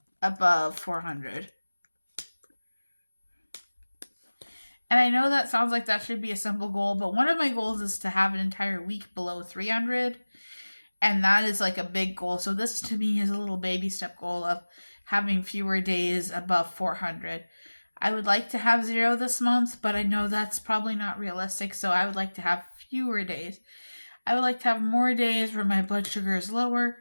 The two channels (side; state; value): both; inverted; correlation -1.00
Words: above 400. And I know that sounds like that should be a simple goal, but one of my goals is to have an entire week below 300. And that is like a big goal. So this to me is a little baby step goal of having fewer days above 400. I would like to have 0 this month, but I know that's probably not realistic. So I would like to have fewer days. I would like to have more days where my blood sugar is lower.